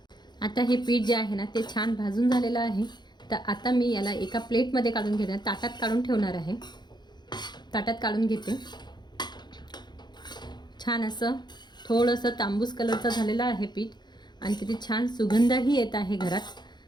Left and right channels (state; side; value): late; right; 0.21 ms